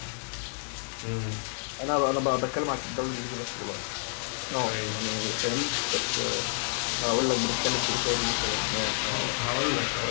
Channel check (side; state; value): right; silent; digital silence